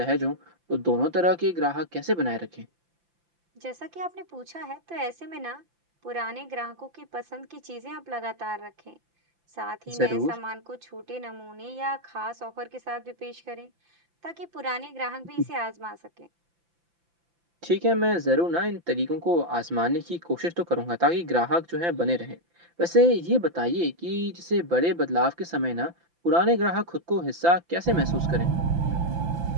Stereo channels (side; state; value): left; late; 5.8 ms